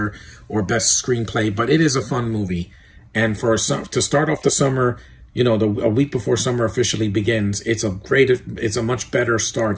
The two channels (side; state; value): both; identical; correlation 1.00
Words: or Best Screenplay, but it is a fun movie. And to start off the summer, you know, a week before summer officially begins, it's a much better